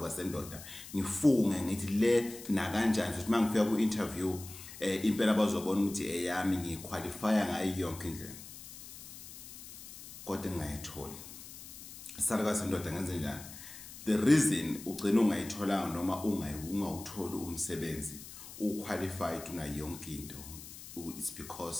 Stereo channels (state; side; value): noise; left; hiss, 14 dB below the sound